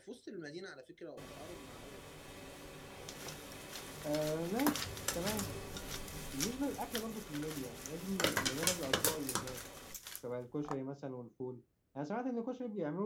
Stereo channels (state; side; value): identical; both; correlation 1.00